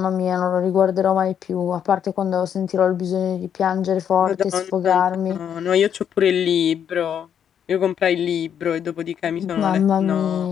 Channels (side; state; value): right; quieter; 8.7 dB